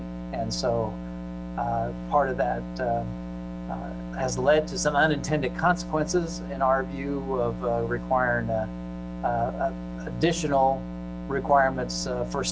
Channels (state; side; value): identical; both; correlation 1.00